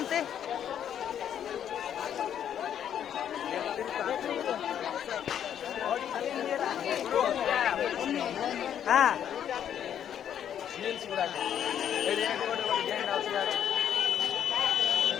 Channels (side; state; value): right; quieter; 9.5 dB